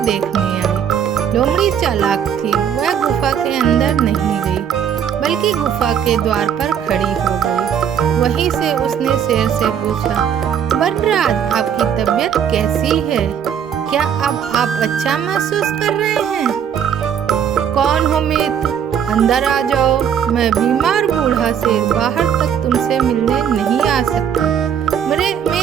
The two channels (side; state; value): left; quieter; 8.5 dB